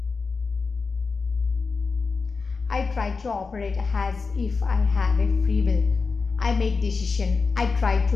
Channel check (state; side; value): quieter; right; 4.5 dB